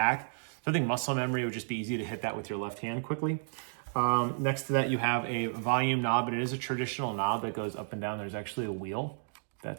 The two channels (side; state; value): left; silent; digital silence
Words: So I think muscle memory would just be easy to hit that with your left hand quickly. Next to that, you have a volume knob, and it is a traditional knob that goes up and down. There's actually a wheel